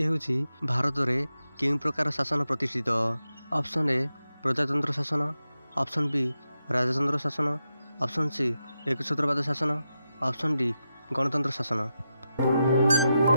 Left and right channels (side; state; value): both; inverted; correlation -0.88